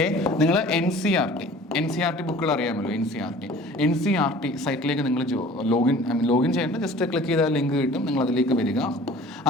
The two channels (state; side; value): normal; both; correlation 0.46